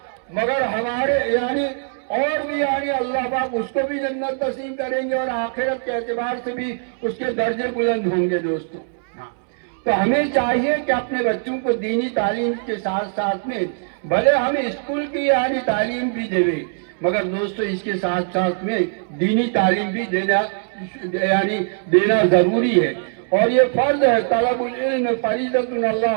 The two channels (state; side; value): silent; left; 65 dB below the other